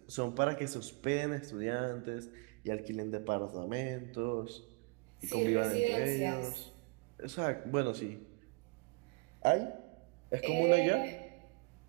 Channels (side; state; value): left; quieter; 28.9 dB